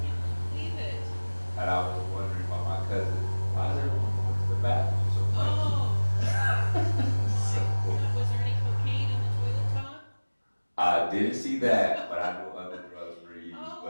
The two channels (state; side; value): inverted; both; correlation -1.00